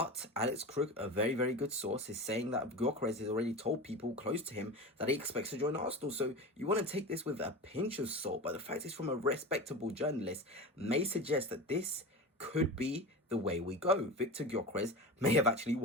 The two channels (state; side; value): normal; both; correlation 0.28